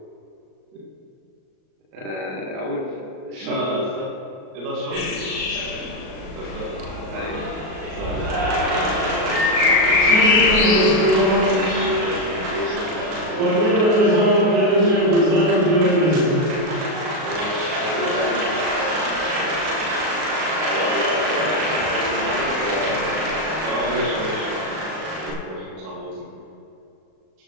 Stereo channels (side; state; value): left; late; 37 ms